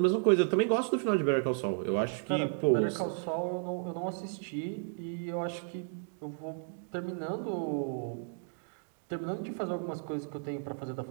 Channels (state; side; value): silent; left; digital silence